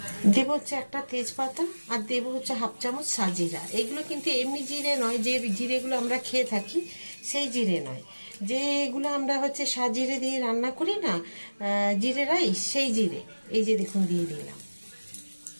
দেবো হচ্ছে একটা তেজপাতা আর দেবো হচ্ছে 1/2 চামচ সাজিরা। এগুলো কিন্তু এমনি জিরে নয়, যে জিরেগুলো আমরা খেয়ে থাকি সেই জিরে নয়, যেগুলো আমরা হচ্ছে সাজিরে দিয়ে রান্না করি না, জিরে রাইস, সেই জিরে। এই যে দেখুন দিয়ে দিলাম।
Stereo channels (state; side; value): inverted; both; correlation -1.00